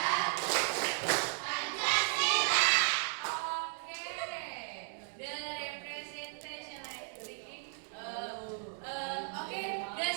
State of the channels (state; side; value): silent; left; 54 dB below the other